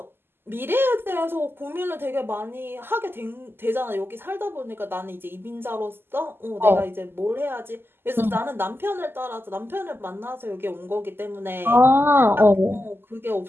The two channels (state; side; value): late; left; 0.11 ms